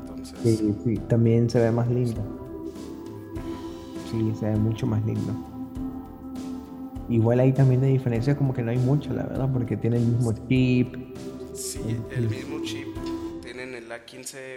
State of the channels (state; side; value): identical; both; correlation 1.00